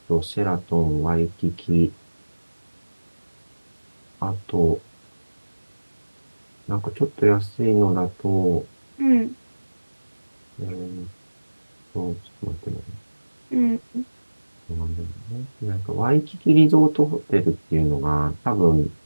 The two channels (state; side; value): inverted; both; correlation -1.00